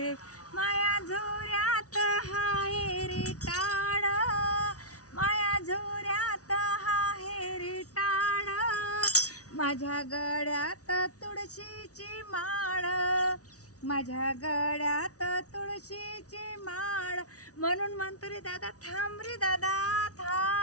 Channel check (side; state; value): right; late; 0.67 ms